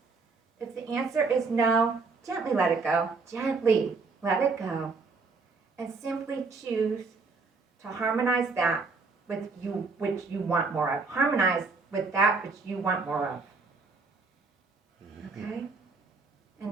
If the answer is no, gently let it go. Gently let it go. And simply choose to harmonize that with you which you want more of. Harmonize with that which you want more of. Okay?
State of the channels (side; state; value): left; quieter; 4.1 dB